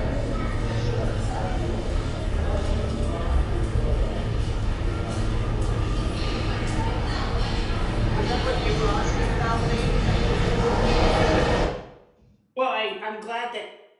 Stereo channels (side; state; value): both; identical; correlation 1.00